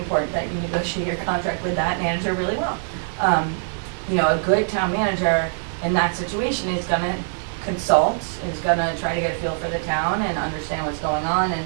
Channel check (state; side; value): silent; left; 61 dB below the other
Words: that you negotiate your contract with that manager really well. a good town manager in that situation is gonna consult, is gonna try to get a feel for the town and understand what's going on